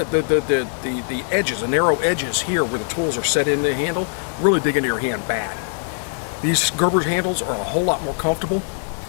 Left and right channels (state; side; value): silent; right; 65 dB below the other